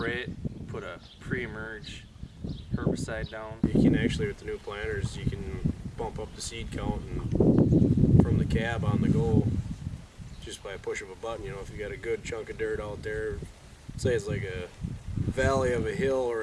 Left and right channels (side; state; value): both; identical; correlation 1.00